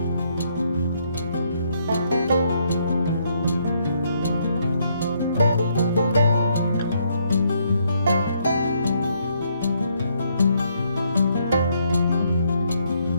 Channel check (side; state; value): both; inverted; correlation -0.72